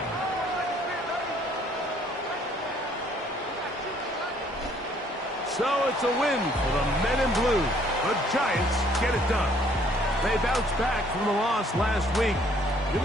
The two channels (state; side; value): normal; both; correlation 0.62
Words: So it's a win for the men in blue. The Giants get it done. They bounced back from the loss last week. Going